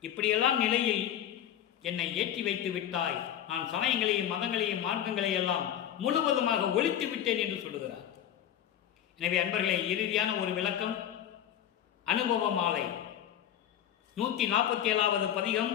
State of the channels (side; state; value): right; quieter; 10.6 dB